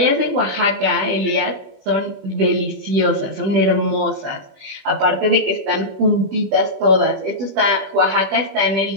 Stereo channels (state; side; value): late; left; 20 ms